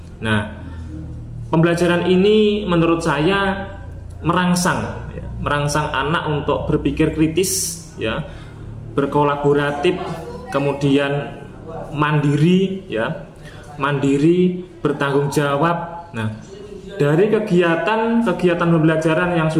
Nah, pembelajaran ini menurut saya merangsang anak untuk berpikir kritis, berkolaboratif, kemudian mandiri, bertanggung jawab. Nah, dari kegiatan pembelajaran yang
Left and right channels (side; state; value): both; identical; correlation 1.00